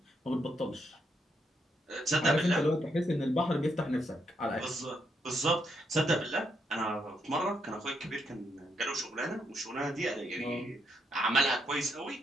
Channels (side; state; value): both; normal; correlation 0.77